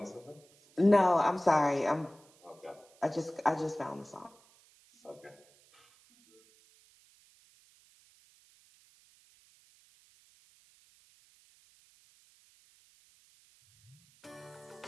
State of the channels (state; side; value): noise; right; hiss, 29 dB below the sound